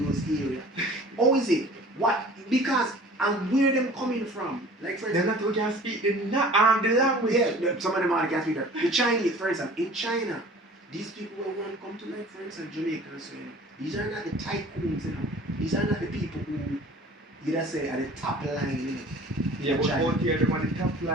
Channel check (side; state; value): both; normal; correlation 0.46